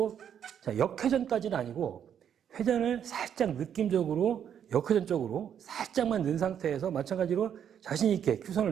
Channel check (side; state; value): left; quieter; 8.9 dB